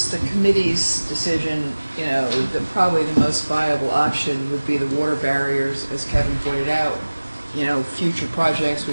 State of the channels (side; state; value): both; inverted; correlation -1.00